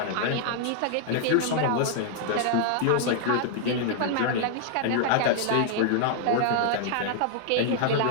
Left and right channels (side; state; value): both; different; correlation 0.00